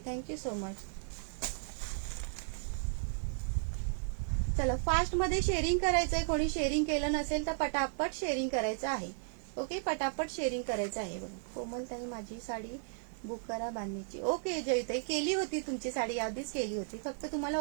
थँक्यू सो मच. चला, फास्ट मध्ये शेअरिंग करायचंय. कोणी शेअरिंग केलं नसेल तर पटापट शेअरिंग करायचं आहे. ओके, पटापट शेअरिंग करायचं आहे. बघा, कोमल ताई माझी साडी बुक करा बांधणीची. ओके जयताई, केली होती तुमची साडी, आधीच केली होती. फक्त तुम्हाला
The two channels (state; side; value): silent; left; digital silence